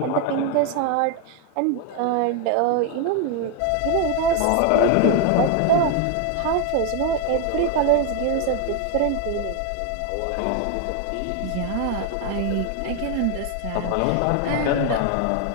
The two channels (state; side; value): different; both; correlation 0.01